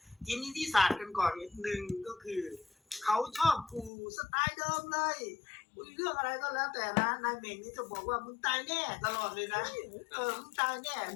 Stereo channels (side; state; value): right; drops out; at 3.9 s